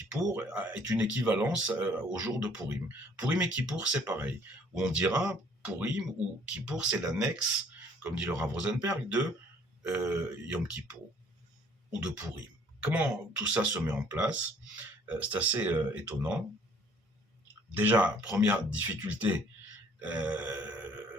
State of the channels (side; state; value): both; normal; correlation 0.58